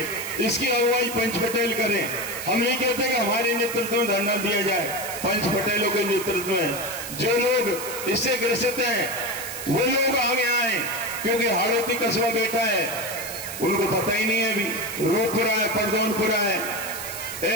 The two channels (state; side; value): noise; right; hiss, 9 dB below the sound